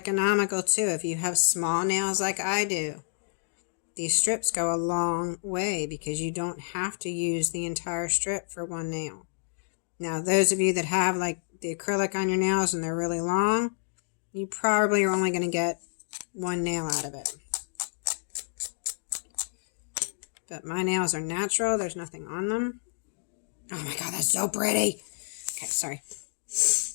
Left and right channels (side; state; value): right; silent; digital silence